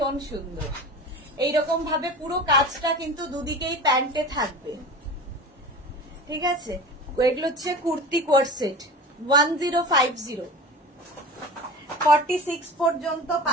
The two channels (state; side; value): normal; both; correlation 0.34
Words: সুন্দর, এইরকম ভাবে পুরো কাজটা কিন্তু দুদিকেই প্যান্টে থাকবে, ঠিক আছে। এগুলো হচ্ছে কুর্তি কোয়ার্ড সেট, 1050, 46 পর্যন্ত